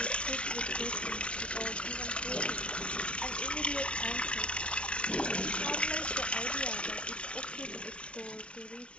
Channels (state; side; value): late; right; 0.059 ms